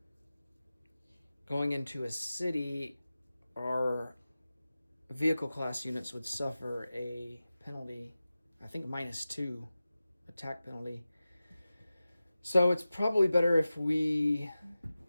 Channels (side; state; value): both; inverted; correlation -0.95